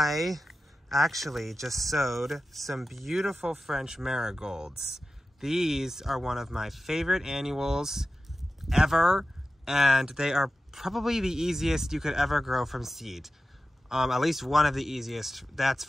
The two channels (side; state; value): both; normal; correlation 0.93